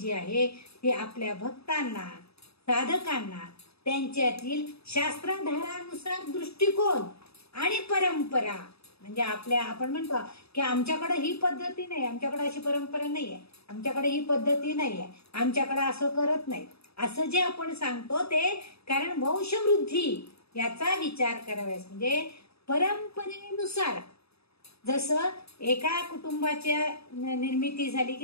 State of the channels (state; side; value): late; right; 0.78 ms